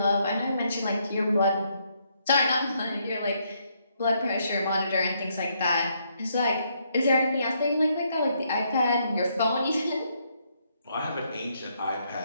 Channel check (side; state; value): both; inverted; correlation -0.74